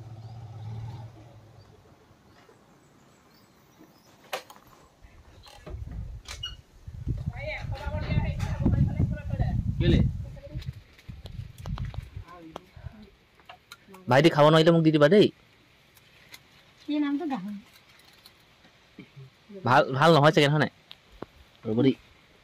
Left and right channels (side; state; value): both; identical; correlation 1.00